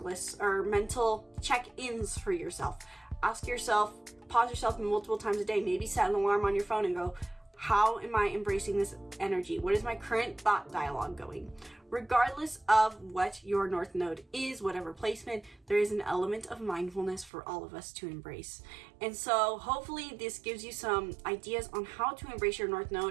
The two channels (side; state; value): left; drops out; at 17.3 s